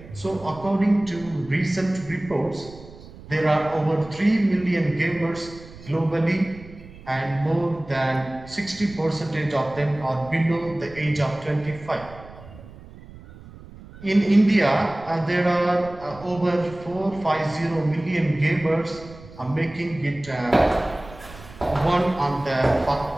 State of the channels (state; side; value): noise; right; rumble, 18 dB below the sound